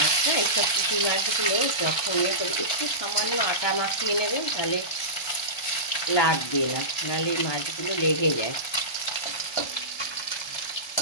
এইসব পুঁটি মাছগুলো যখন একটু সামান্য আটা মাখিয়ে নেবেন, তাহলে লাগবে না, নাহলে মাছগুলো লেগে যায়।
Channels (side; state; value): right; late; 1.2 ms